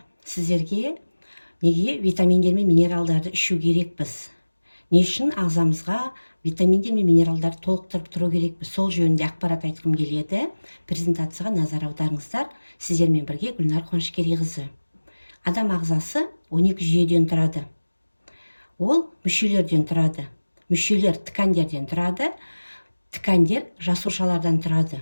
сіздерге неге витаминдер мен минералдарды ішу керекпіз? Не үшін ағзамызға витаминдер мен минералдарды толықтырып тұру керекпіз? Сол жөнінде ақпарат айтқым келеді. Презентацияға назар аударыңыздар. Сіздермен бірге Гүлнар Қуанышкерейқызы. Адам ағзасы 12 жүйеден тұрады. Ол мүшелерден тұрады. Мүшелер ткандерден тұрады. Ткандер жасушалардан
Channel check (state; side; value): inverted; both; correlation -1.00